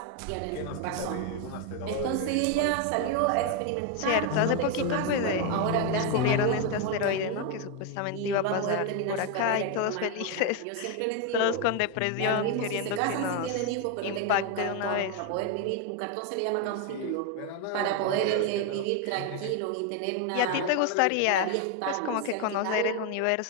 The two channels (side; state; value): both; different; correlation 0.01